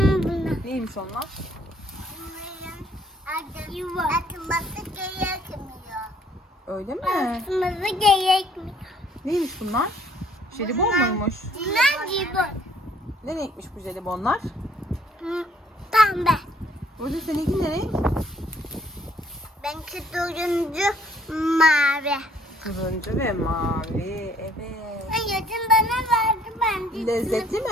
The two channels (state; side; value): normal; both; correlation 0.62